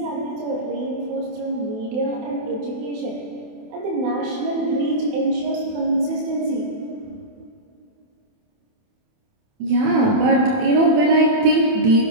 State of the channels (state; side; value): late; left; 28 ms